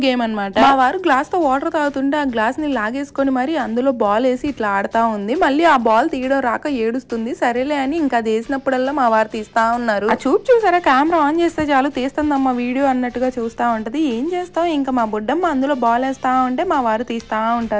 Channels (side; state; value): both; identical; correlation 1.00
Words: గేమ్ అనమాట. మా వారు గ్లాస్ తో వాటర్ తాగుతుంటే ఆ గ్లాస్ ని లాగేసుకొని మరి అందులో బాల్ వేసి ఇట్లా ఆడుతా ఉంది. మళ్ళీ ఆ బాల్ తీయడం రాక ఏడుస్తుంది. సరేలే అని ఇంకా అది వేసినప్పుడల్లా మా వారు తీస్తా ఉన్నారు. ఆ చూసారా, కెమెరా ఆన్ చేస్తే చాలు తీస్తుందమ్మా వీడియో అన్నట్టుగా చూస్తా ఉంటది. ఏం చేస్తాం, ఇంకా మా బుడ్డమ్మ అందులో బాల్ వేస్తా ఉంటే మా వారు తీస్తా